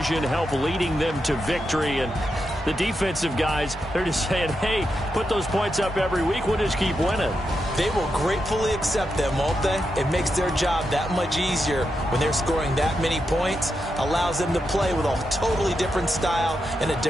helped leading them to victory, and the defensive guys, they're just saying, hey, put those points up every week, we'll just keep winning. They will gratefully accept them, won't they? It makes their job that much easier when they're scoring that many points, allows them to play with a totally different style and a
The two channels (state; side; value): normal; both; correlation 0.86